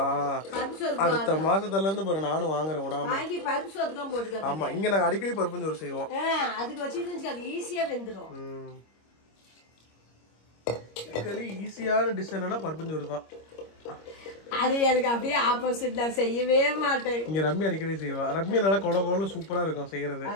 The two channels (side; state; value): right; late; 26 ms